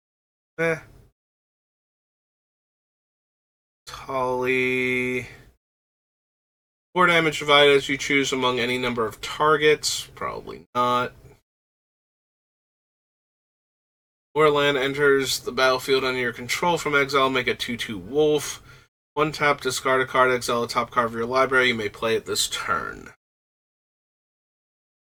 Tolly. 4 damage divided as you choose among any number of targets. Probably not. Where land enters the battlefield under your control from exile, make a 2/2 wolf. 1 tap, discard a card, exile a top card of your library. You may play it this turn.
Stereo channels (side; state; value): both; identical; correlation 1.00